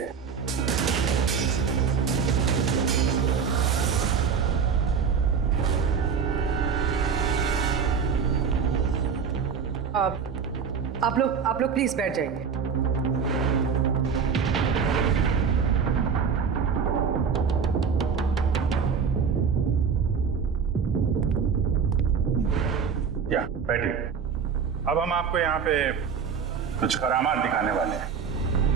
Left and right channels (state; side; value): quieter; left; 6.4 dB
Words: आप लोग प्लीज बैठ जाइए। या बैठिए। अब हम आपको यहाँ पे कुछ करामात दिखाने वाले हैं।